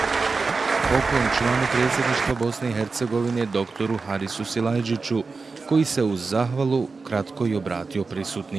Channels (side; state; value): left; quieter; 4.3 dB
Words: Poklon članu predsjedništva Bosne i Hercegovine doktoru Harisu Silajdžiću, koji se uz zahvalu kratko i obratio